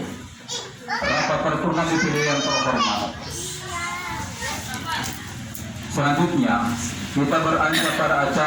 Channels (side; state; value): both; identical; correlation 1.00